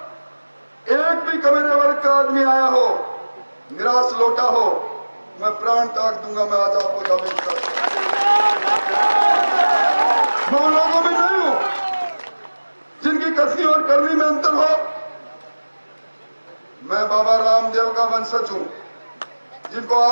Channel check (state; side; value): inverted; both; correlation -1.00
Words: एक भी कमेरे वर्ग का आदमी आया हो, निराश लौटा हो, मैं प्राण त्याग दूंगा। मैं आज आपको दावे करता हूं, मैं उन लोगों में नहीं हूं जिनकी कसनी और करनी में अंतर हो। मैं बाबा रामदेव का वंशज हूं, जिनको